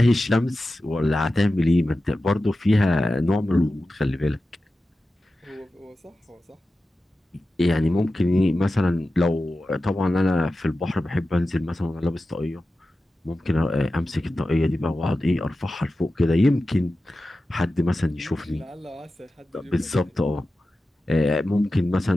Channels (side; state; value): both; normal; correlation 0.93